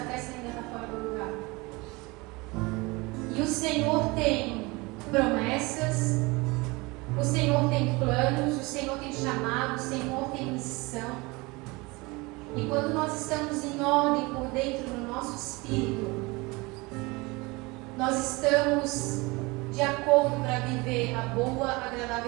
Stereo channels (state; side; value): quieter; left; 24.6 dB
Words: ainda está fora do lugar. E o Senhor tem promessas, o Senhor tem planos, o Senhor tem chamado, o Senhor tem missão. E quando nós estamos em ordem por dentro do nosso espírito, nós estamos de acordo para viver a boa,